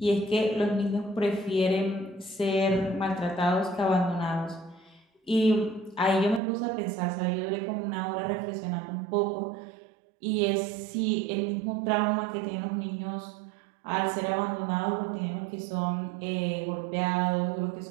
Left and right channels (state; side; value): drops out; left; at 6.4 s